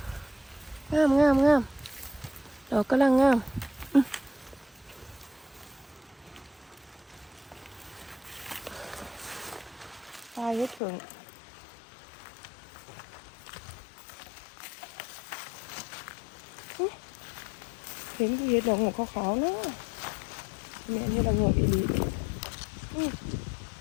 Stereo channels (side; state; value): right; drops out; at 10.8 s